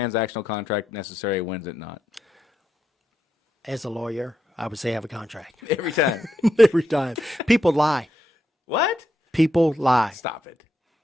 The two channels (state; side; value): normal; both; correlation 0.82